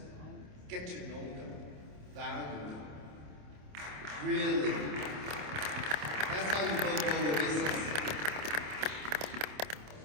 get to know them, value them. Really. That's how you build global business.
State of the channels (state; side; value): late; left; 27 ms